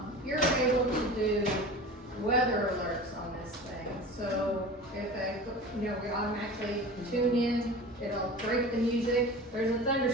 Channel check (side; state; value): both; normal; correlation 0.35